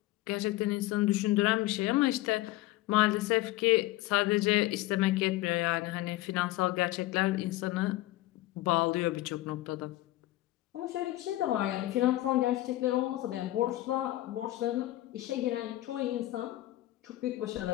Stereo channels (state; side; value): quieter; right; 17.0 dB